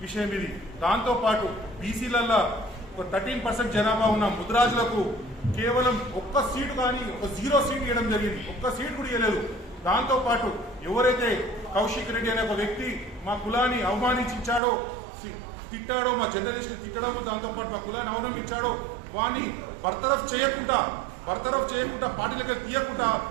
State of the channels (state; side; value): drops out; left; at 14.6 s